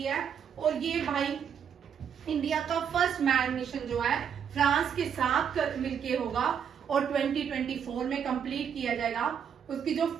है। और ये भाई इंडिया का फर्स्ट मैन मिशन जो है फ्रांस के साथ मिलके होगा और 2024 में कंप्लीट किया जाएगा। उसकी जो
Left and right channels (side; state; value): left; quieter; 7.9 dB